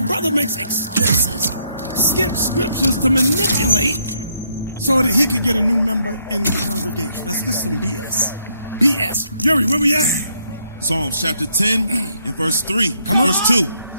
brother makes excuses, skip scriptures to manipulate so that he could get a new member in the congregation. This is some BS. BS. Yuri, where we at? Psalms chapter 10 and verse 3. Come on. Verse 2.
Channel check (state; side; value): inverted; both; correlation -0.73